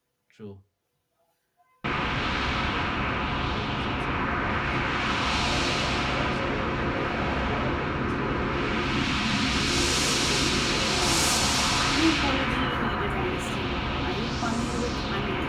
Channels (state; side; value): identical; both; correlation 1.00